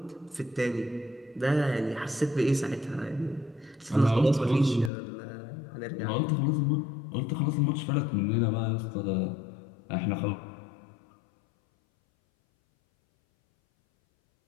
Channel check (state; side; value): drops out; right; at 4.9 s